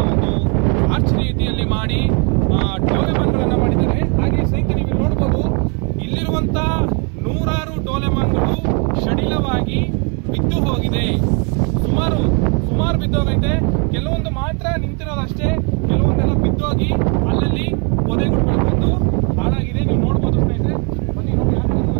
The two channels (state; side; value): quieter; left; 35.5 dB